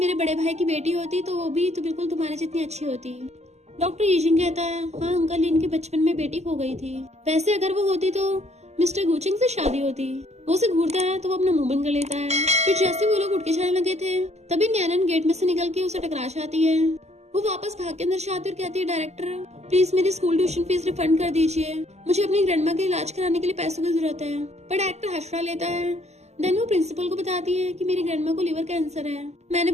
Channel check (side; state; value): left; late; 0.32 ms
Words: बड़े भाई की बेटी होती तो वो भी तो बिल्कुल तुम्हारे जितनी अच्छी होती। डॉक्टर येचिंग कहता है हाँ अंकल, इनके बचपन में बेटी खो गई थी, वैसे अगर वो होती तो मिस्टर गुचेंग से शादी होती। वो उसे घूरता है तो वो अपना मुंह बंद कर लेता है। फिर जैसे वो लोग उठ के जाने लगे थे तभी न्यानन गेट में से निकल के उसे टकरा जाती है। वो वापस भाग के अंदर जाती और कहती है डायरेक्टर प्लीज मेरी स्कूल ट्यूशन फीस रिफंड कर दीजिए, मुझे अपनी ग्रैंडमा के इलाज कराने के लिए पैसों की जरूरत है। पर डायरेक्टर हंसड़ा लेता है। देन वो प्रिंसिपल को बताती है कि मेरी ग्रैंडमा को लिवर कैंसर है, मैंने